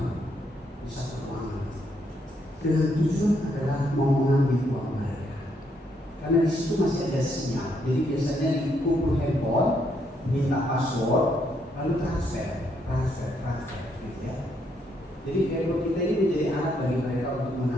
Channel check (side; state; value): both; normal; correlation 0.74